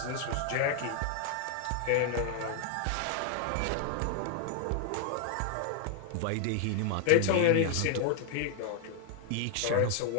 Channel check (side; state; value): both; different; correlation 0.00